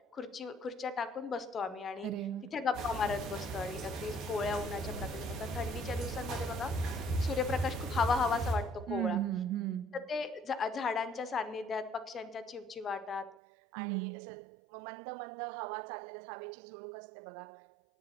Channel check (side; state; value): left; drops out; at 13.4 s